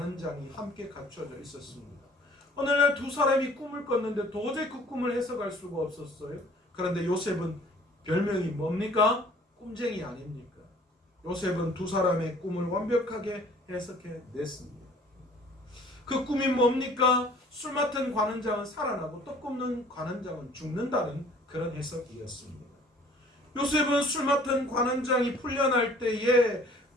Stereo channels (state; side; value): normal; both; correlation 0.52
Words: 함께 갇혀져 있었습니다. 어느 날 두 사람이 꿈을 꿨는데 도저히 그 꿈을 해석할 수가 없었어요. 그런데 요셉은 별명이 뭡니까? 꿈쟁이 아닙니까? 요셉은 두 사람의 꿈을 완벽하게 해석해 냈습니다. 그 꿈이 뭡니까? 술 맡은 관원장은 살아나고 떡 굽는 관원장은 죽는다는 그런 해석이었습니다. 요셉은 술 맡은 관원장이 풀려날 때에